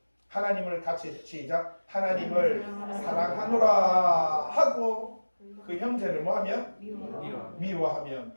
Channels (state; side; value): inverted; both; correlation -1.00